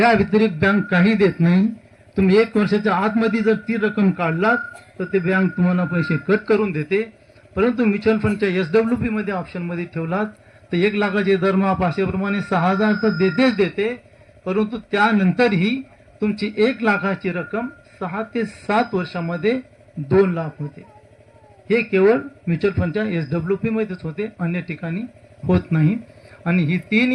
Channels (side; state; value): both; identical; correlation 1.00